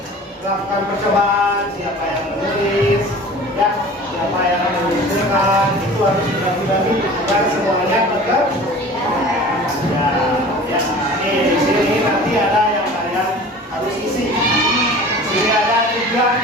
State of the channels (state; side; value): normal; both; correlation 0.41